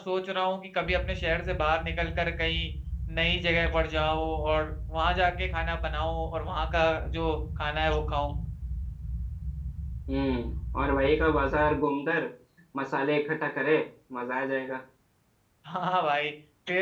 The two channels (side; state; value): both; identical; correlation 1.00